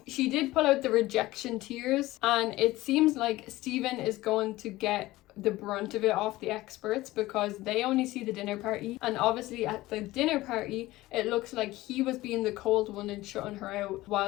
she did pull out the rejection tears, and it seems like Stephen is going to get the brunt of it off the experts, because they only see the dinner party, and obviously at the dinner party it looks like he was being the cold one and shutting her out,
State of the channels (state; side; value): quieter; right; 17.9 dB